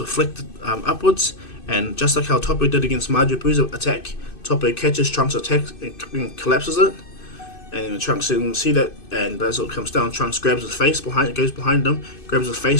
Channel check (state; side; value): late; right; 2.6 ms